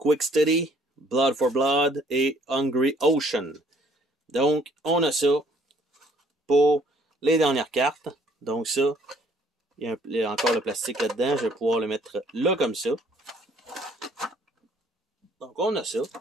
Steady, Blood for Blood et Hungry Ocean. Donc, on a ça pour les dernières cartes. Donc ça, il y a encore le plastique là-dedans. Je vais pouvoir le mettre là comme ça. Donc, on a ça.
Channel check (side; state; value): both; normal; correlation 0.61